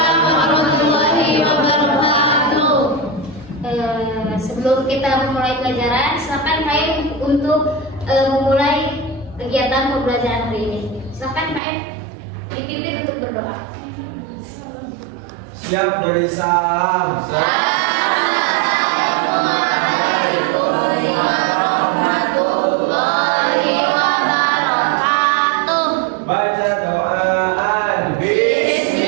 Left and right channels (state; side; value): drops out; left; at 11.6 s